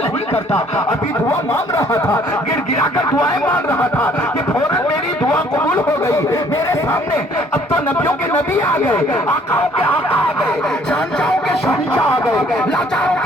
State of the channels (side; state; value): both; normal; correlation 0.60